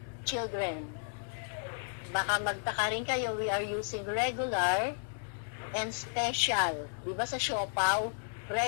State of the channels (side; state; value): right; silent; digital silence